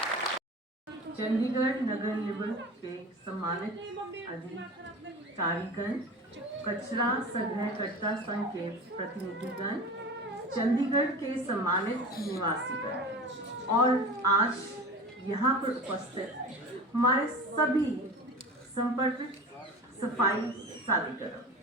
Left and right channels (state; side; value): normal; both; correlation 0.33